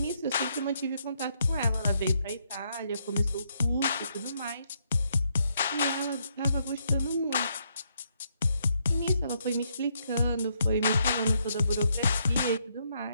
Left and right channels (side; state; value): both; inverted; correlation -0.75